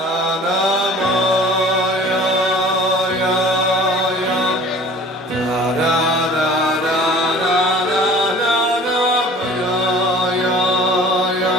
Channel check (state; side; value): normal; both; correlation 0.46